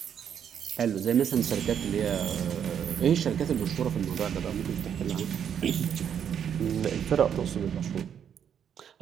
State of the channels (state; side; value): quieter; left; 8.5 dB